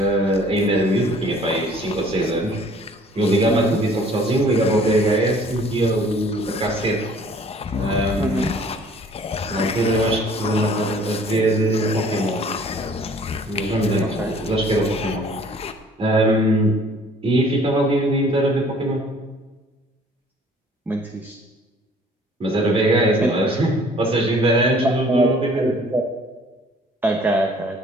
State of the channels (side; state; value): both; normal; correlation 0.54